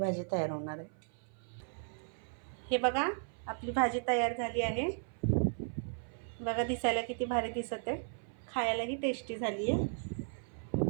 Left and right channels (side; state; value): left; silent; 54 dB below the other